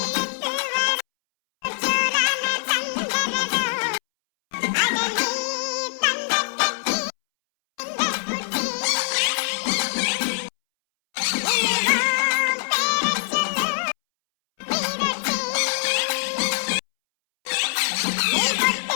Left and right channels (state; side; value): silent; right; 63 dB below the other